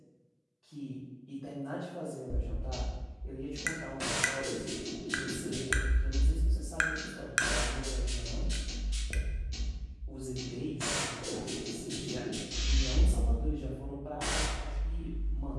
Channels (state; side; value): identical; both; correlation 1.00